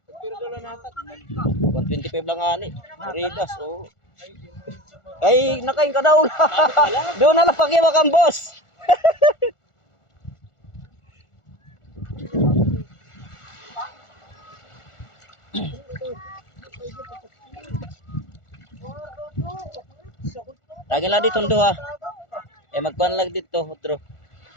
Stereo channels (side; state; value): right; late; 1.4 ms